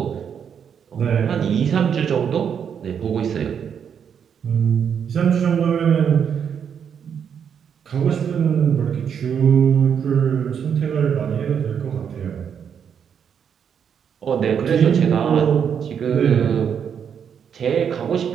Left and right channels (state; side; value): quieter; left; 7.7 dB